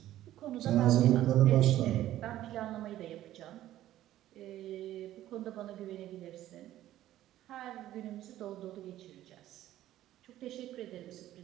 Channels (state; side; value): quieter; left; 13.6 dB